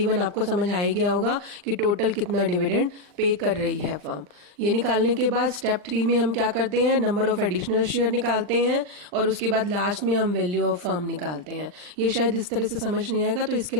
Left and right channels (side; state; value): left; late; 40 ms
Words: आपको समझ आ ही गया होगा कि टोटल कितना डिविडेंड पे कर रही है फर्म। ये निकालने के बाद स्टेप 3 में हम क्या करते हैं, नंबर ऑफ एडिशनल शेयर निकालते हैं और उसके बाद लास्ट में हम वैल्यू ऑफ फर्म निकालते हैं। ये शायद इस तरह से समझ नहीं आएगा, तो इसके